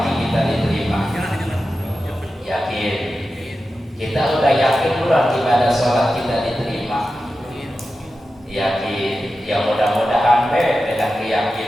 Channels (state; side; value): normal; both; correlation 0.92